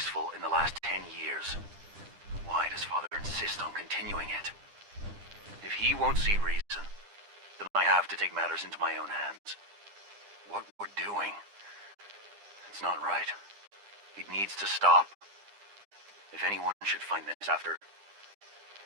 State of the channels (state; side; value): late; left; 9.9 ms